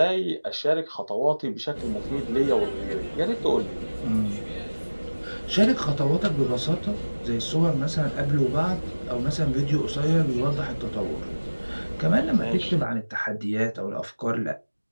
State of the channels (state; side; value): inverted; both; correlation -1.00